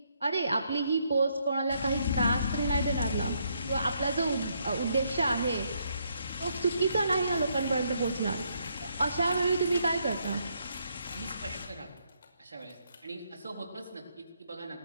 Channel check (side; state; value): both; inverted; correlation -0.74